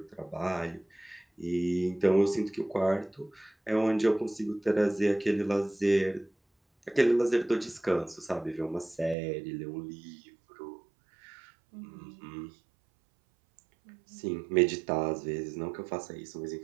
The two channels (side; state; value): left; drops out; at 9.2 s